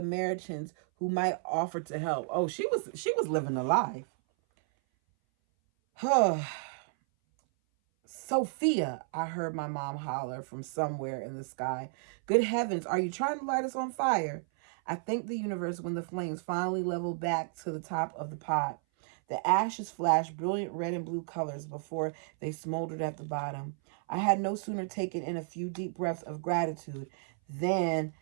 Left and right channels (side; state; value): left; silent; 56 dB below the other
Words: who might offer to help. Oh, she was living a life. Sophia, I heard my mom holler from somewhere in the sky. Good heavens, are you trying to light us on fire? I thanked the universe when the flames finally leveled back to the top of the pot. The ashes flashed brilliant red and blue colors before they smoldered at the bottom. I had no sooner taken in a few deep breaths of gratitude than